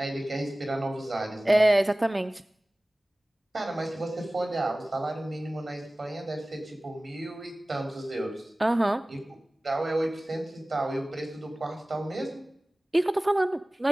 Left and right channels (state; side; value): normal; both; correlation 0.98